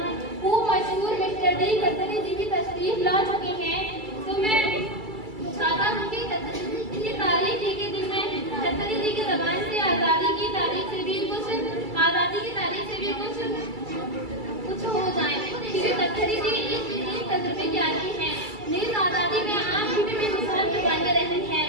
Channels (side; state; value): left; late; 2.3 ms